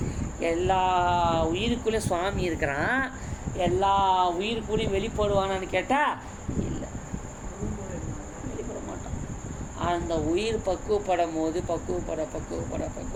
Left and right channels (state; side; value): identical; both; correlation 1.00